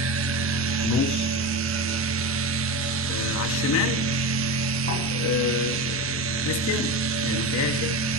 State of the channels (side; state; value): right; noise; rumble, 20 dB below the sound